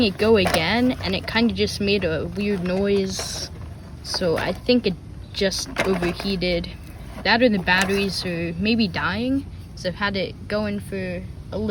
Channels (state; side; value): identical; both; correlation 1.00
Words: it go again and it kind of just made a weird noise. So I think it just overheated. That or the batteries are maybe dying. Because I've had it going for a